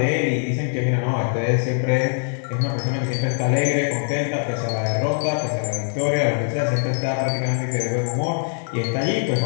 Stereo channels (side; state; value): right; silent; digital silence